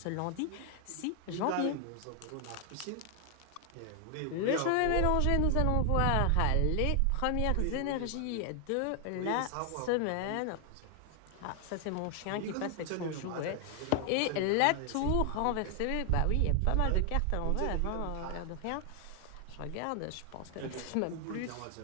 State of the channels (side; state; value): both; different; correlation 0.00